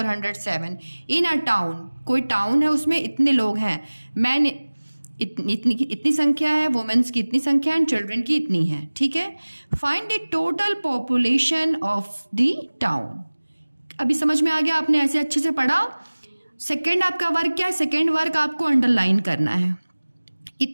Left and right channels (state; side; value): inverted; both; correlation -1.00